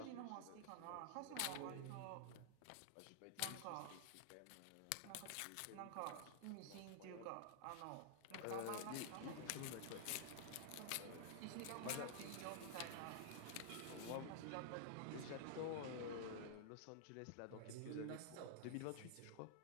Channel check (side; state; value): both; different; correlation -0.01